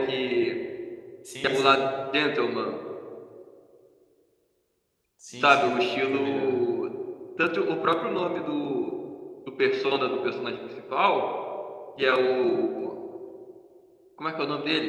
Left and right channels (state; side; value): identical; both; correlation 1.00